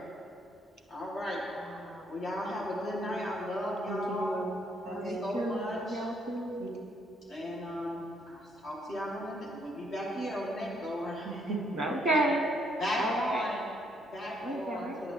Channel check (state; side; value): normal; both; correlation 0.71